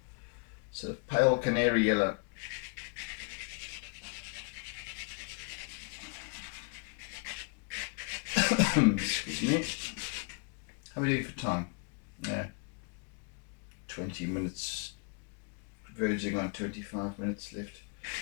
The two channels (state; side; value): quieter; right; 35.8 dB